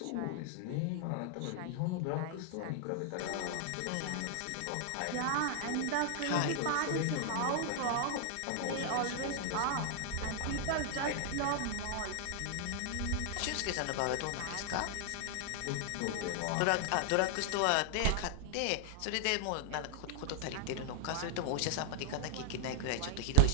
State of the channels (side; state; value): both; different; correlation 0.00